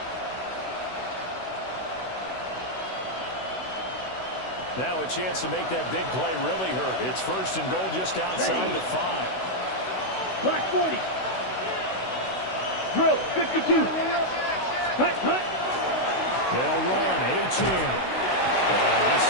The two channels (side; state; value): right; late; 16 ms